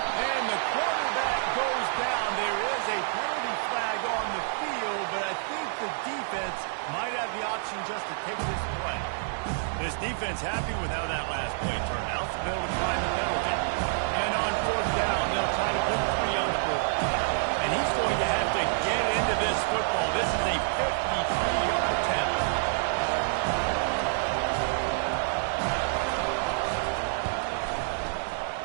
the quarterback goes down. There is a penalty flag on the field, but I think the defense might have the option just to take this play. This defense happy with how that last play turned out, so they'll decline the penalty. And on fourth down, they'll try to put 3 on the board. And he's going to have to get into this football. This is a 53-yard attempt.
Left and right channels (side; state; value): left; silent; digital silence